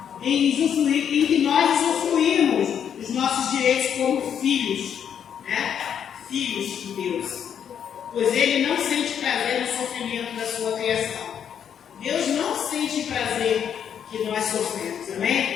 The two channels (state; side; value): quieter; right; 8.5 dB